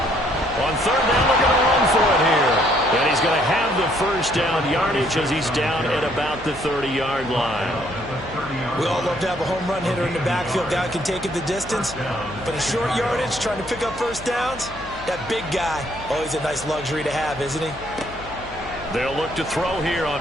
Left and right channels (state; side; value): noise; left; hum, 17 dB below the sound